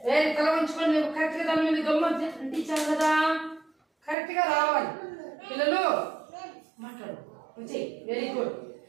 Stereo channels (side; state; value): left; drops out; at 4.2 s